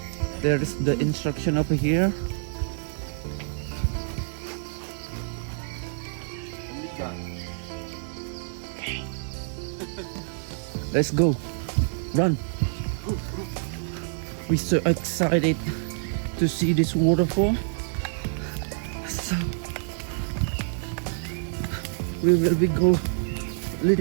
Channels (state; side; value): silent; left; digital silence